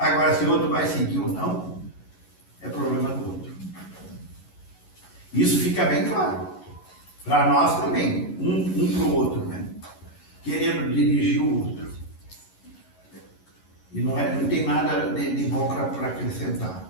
se o outro vai seguir ou não, é problema do outro. Isso fica bem claro. Para nós também, um para o outro, né? Querendo dirigir o outro. E não tem nada de bom para acrescentar.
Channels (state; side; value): late; right; 11 ms